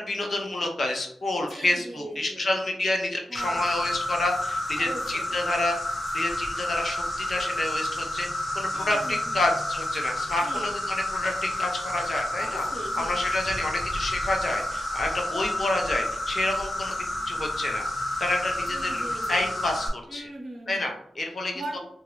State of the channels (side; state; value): both; normal; correlation 0.90